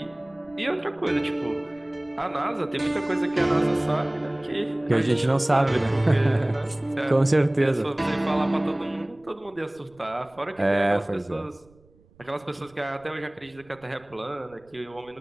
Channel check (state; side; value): noise; right; rumble, 30 dB below the sound